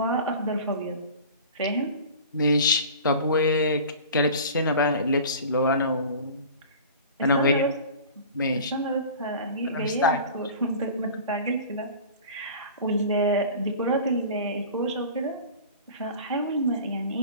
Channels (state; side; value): inverted; both; correlation -0.40